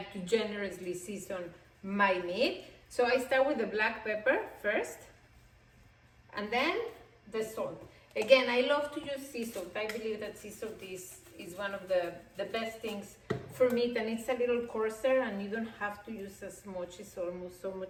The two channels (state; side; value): identical; both; correlation 1.00